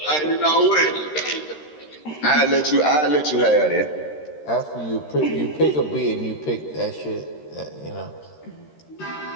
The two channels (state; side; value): late; right; 13 ms